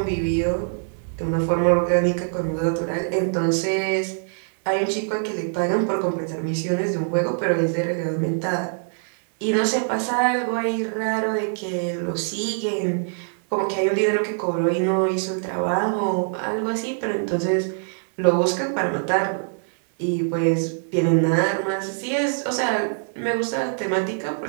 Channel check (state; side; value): silent; left; 63 dB below the other